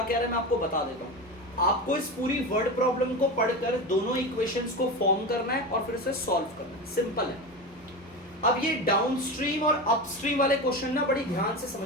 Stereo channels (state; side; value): normal; both; correlation 0.23